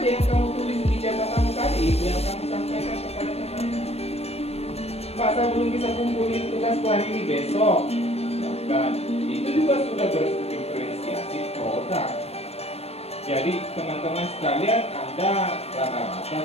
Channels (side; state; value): right; late; 0.30 ms